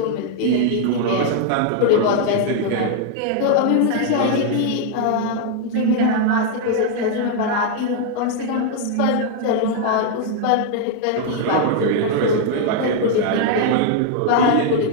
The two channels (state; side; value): different; both; correlation 0.00